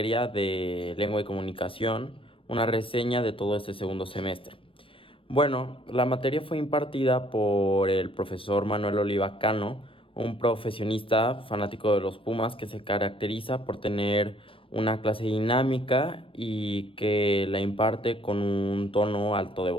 de lengua y comunicación, una reseña de todo este segundo semestre. Bueno, la materia fue impartida por el profesor Manuel Oliva Cano, un profesionista fanático de los Pumas que se caracteriza por tener una clase dinámica y que la imparte con un tono alto de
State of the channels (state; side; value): late; right; 0.26 ms